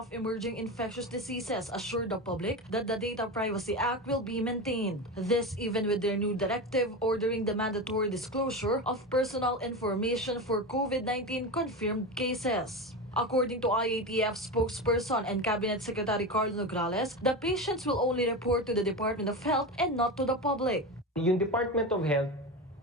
Emerging Infectious Diseases assured the public that the Data Privacy Act will be maintained. This even with their new directive ordering the mandatory disclosure of personal information for COVID-19 confirmed cases. According to IATF spokesperson and Cabinet Secretary Leonor Ordonez, the patients will only report to the Department of Health and not to the public. Yung Department of Health,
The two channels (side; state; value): both; normal; correlation 0.22